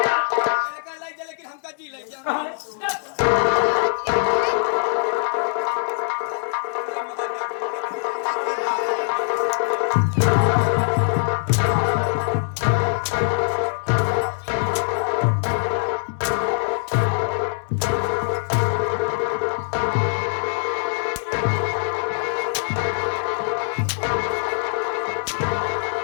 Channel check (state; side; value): silent; right; digital silence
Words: लेकिन हमका जी